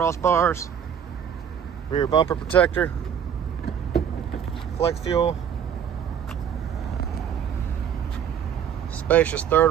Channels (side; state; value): left; quieter; 8.4 dB